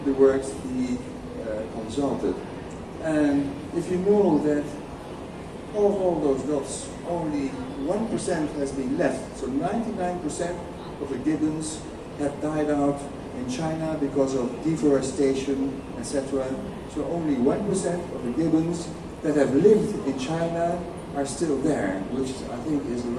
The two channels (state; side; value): identical; both; correlation 1.00